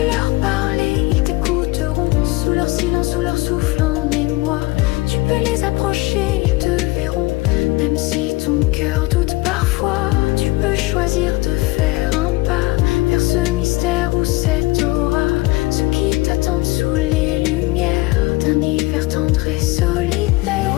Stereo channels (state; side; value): quieter; right; 21.1 dB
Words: leur parler, ils t'écouteront. Sous leur silence, sous leur souffle en émoi. Tu peux les approcher, ils te verront. Même si ton cœur doute parfois, tu peux choisir de faire un pas vers ce mystère ou cette aura. Ceux qui t'attendent sous les lumières d'un hiver tendre et solitaire.